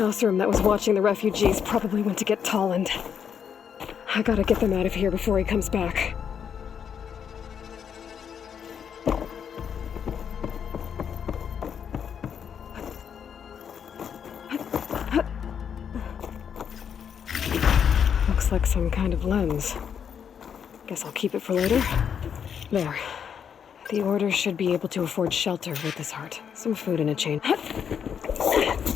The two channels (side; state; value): right; quieter; 7.7 dB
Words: Osram that was watching the refugees probably went to get Tolland. I gotta get them out of here before he comes back. Looks like some kind of lens. Guess I'll keep it for later. There. The Order should be able to afford shelter with this heart. Some food and a chain.